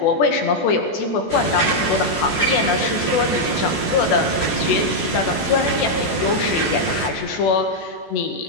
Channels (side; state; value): right; late; 14 ms